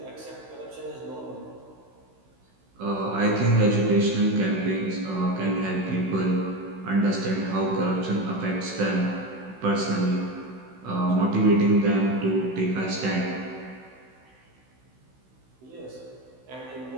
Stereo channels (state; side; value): late; left; 16 ms